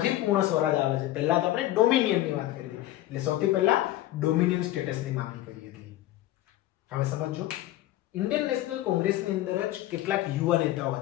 પૂર્ણ સ્વરાજ આવે છે, પહેલા તો આપણે ડોમિનિયનની વાત કરી હતી, એટલે સૌથી પહેલા ડોમિનિયન સ્ટેટસની માંગણી કરી હતી. હવે સમજો, ઇન્ડિયન નેશનલ કોંગ્રેસની અંદર જ કેટલાક યુવા નેતાઓ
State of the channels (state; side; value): quieter; right; 15.0 dB